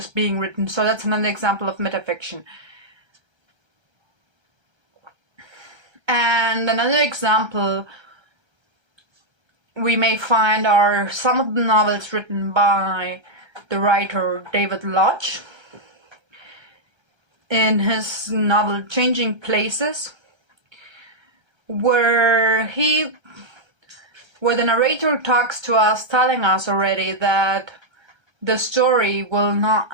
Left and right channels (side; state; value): left; late; 1.3 ms